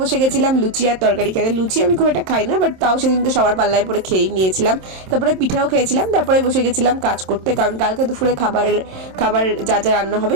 বসে গেছিলাম লুচি আর তরকারি খেতে। লুচি আমি খুব একটা খাই না, বাট তাও সেদিনকে সবার পাল্লায় পরে খেয়েই নিয়েছিলাম। তারপরে পিঠাও খেয়েছিলাম। তারপরে বসে গেছিলাম কাজ করতে, কারণ কালকে দুপুরে খাবার যা যা রান্না হবে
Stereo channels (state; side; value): late; left; 27 ms